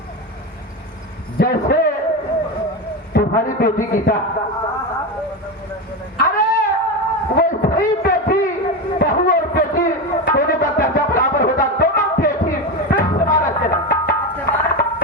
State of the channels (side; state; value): both; normal; correlation 0.16